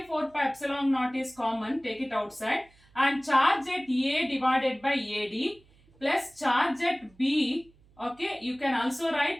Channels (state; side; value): noise; right; hum, 30 dB below the sound